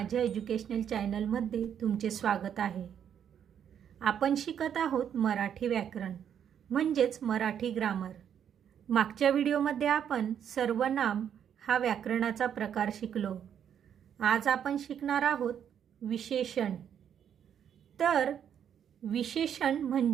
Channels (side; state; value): left; quieter; 8.8 dB